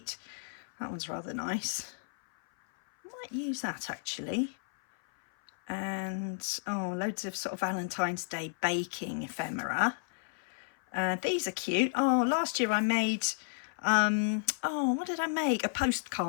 That one's rather nice. I might use that actually. And oh, loads of sort of Valentine's Day baking ephemera. These are cute. Oh, last year I made, what did I make? A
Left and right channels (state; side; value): silent; right; 56 dB below the other